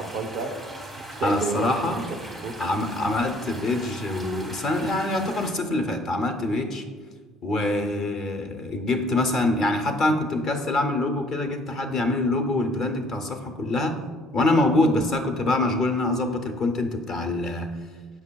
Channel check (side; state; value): both; normal; correlation 0.59